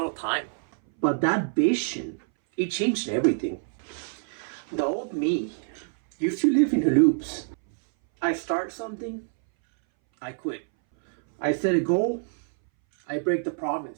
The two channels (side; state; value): left; silent; 60 dB below the other